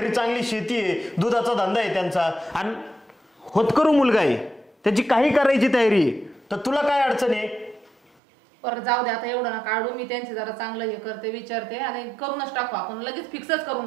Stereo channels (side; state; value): left; drops out; at 8.2 s